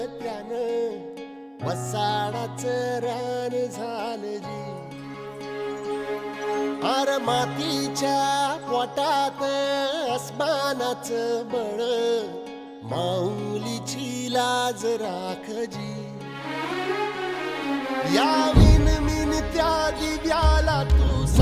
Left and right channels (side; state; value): both; identical; correlation 1.00